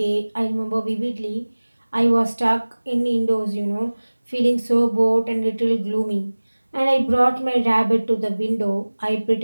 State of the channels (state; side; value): inverted; both; correlation -1.00